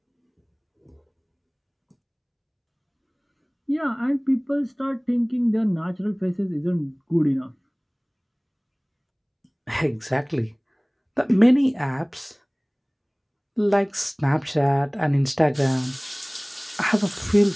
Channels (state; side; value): identical; both; correlation 1.00